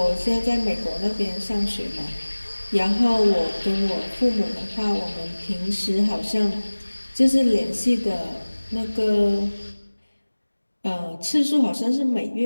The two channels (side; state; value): both; inverted; correlation -1.00